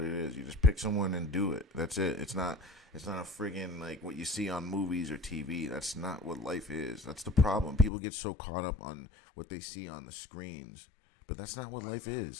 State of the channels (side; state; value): right; drops out; at 7.9 s